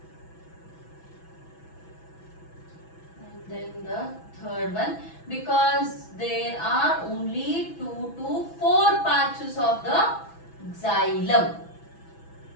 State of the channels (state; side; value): late; right; 6.1 ms